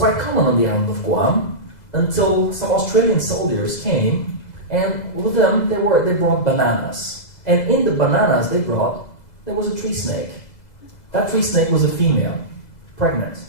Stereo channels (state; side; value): late; right; 2.0 ms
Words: common on the island of Guam until some Australian soldiers came, and with them they brought bananas. And in the bananas there was a tree snake. That tree snake was a female, pregnant.